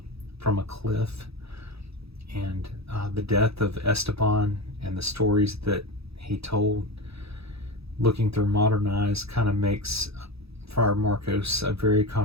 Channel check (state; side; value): late; left; 0.77 ms